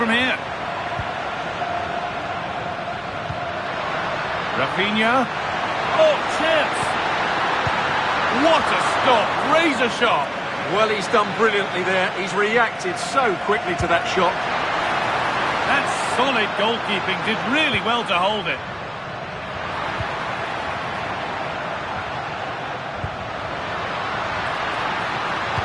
here? Rafinha. Oh, chance. What a stop. Razor sharp. Well, he's done brilliantly there. He's reacted so quickly to that shot. That's solid goalkeeping. Did really well to hold it.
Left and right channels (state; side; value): identical; both; correlation 1.00